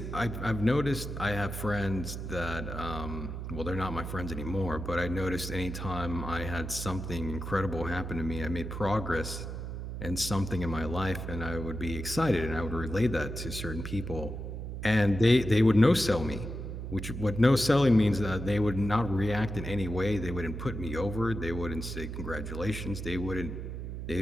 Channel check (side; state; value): right; noise; hum, 6 dB below the sound